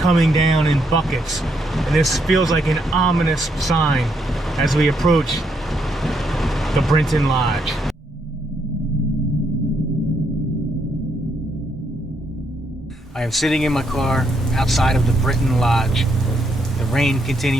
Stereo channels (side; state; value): both; normal; correlation 0.76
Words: down in buckets, and this feels like an ominous sign as we approach the Brinton Lodge. I am sitting in my car outside of the Brinton Lodge. The rain